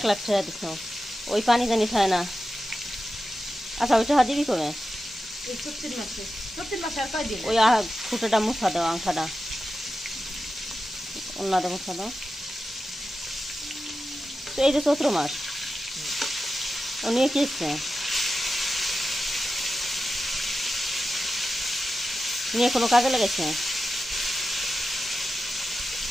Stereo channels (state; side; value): normal; both; correlation 0.92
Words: লাখ টাকা দিছ, ওই পানি জানি খায় না। আচ্ছা ওইটা দিবি কবে? ওই ফুটাটা মুছা দাও, আংখাটা অন্যটা মুছা দাও। তো এই যে চৈত্র মাস ও নিয়ে কি এসছে, নিয়ে কোনো কাজে লেগেছে?